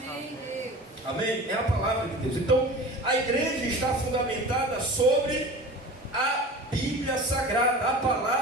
Deus. Amém? É a palavra de Deus. Então, a igreja está fundamentada sobre a Bíblia Sagrada, a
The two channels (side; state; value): both; normal; correlation 0.36